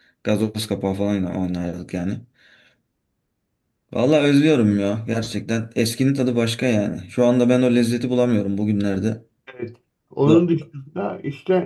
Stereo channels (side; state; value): both; identical; correlation 1.00